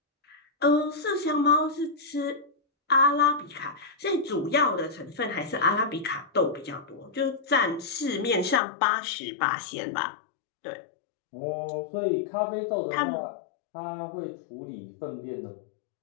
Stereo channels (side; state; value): right; drops out; at 8.6 s